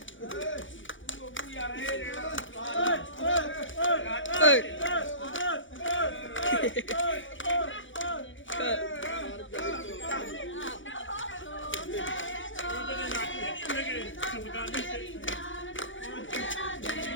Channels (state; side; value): late; right; 0.56 ms